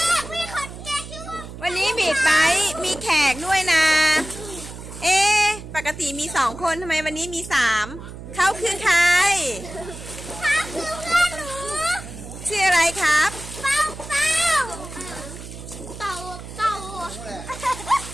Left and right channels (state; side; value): noise; right; hum, 12 dB below the sound